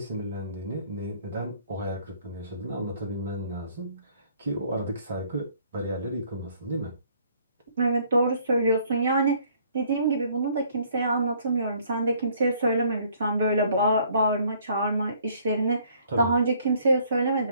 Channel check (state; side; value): inverted; both; correlation -0.61